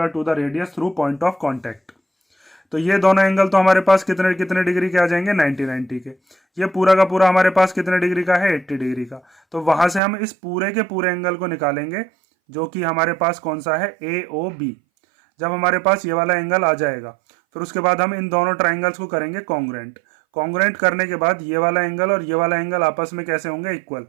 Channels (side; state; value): left; drops out; at 10.0 s